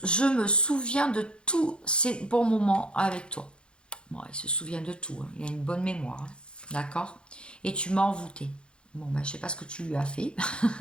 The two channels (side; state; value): right; late; 0.054 ms